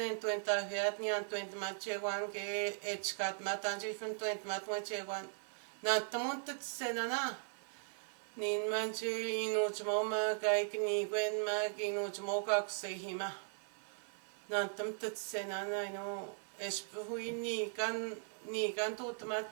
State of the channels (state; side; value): silent; left; 52 dB below the other